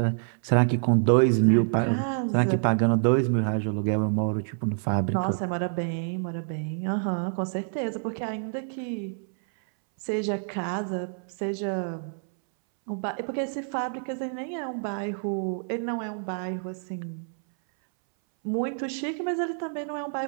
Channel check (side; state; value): left; silent; 60 dB below the other